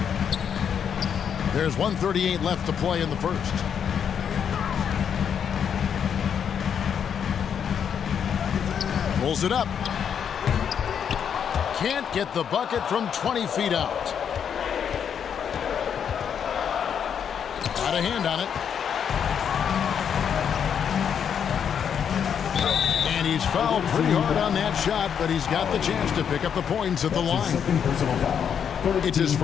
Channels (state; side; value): quieter; right; 7.9 dB